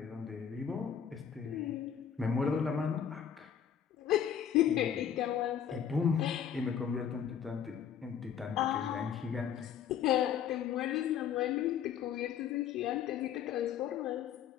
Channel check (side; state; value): right; quieter; 8.6 dB